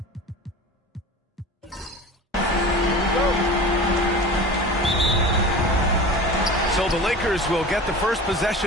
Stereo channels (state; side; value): normal; both; correlation 0.36